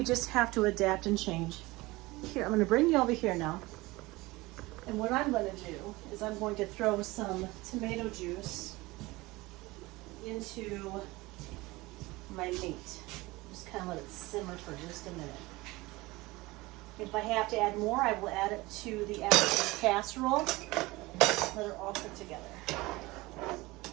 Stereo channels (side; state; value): left; quieter; 21.2 dB